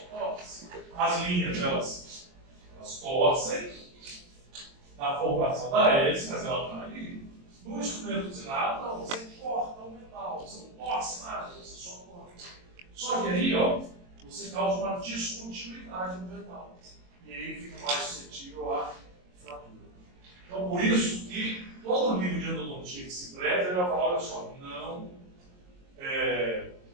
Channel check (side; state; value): left; late; 22 ms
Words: torce. As linhas, elas torcem na formação da hélice, mas ela está ali. No instrumento usinado, não, você corta o metal, você não torce nada, você só corta. Só que aí, você causa uma descontinuidade no metal. E aí fica mais suscetível à fratura. Então, por isso que todo livro de endodontia que se preza, ele vai falar, olha só, não